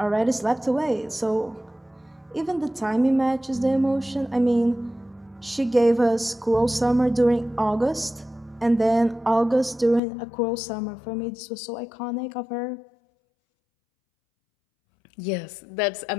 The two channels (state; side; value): drops out; right; at 10.0 s